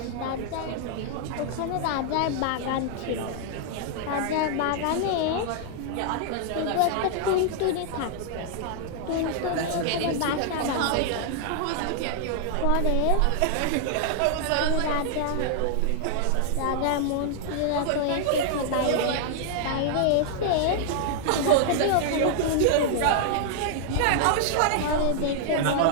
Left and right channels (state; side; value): different; both; correlation -0.01